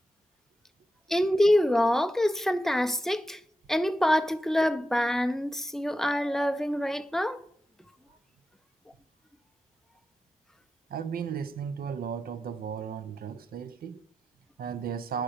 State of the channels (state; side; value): normal; both; correlation 0.90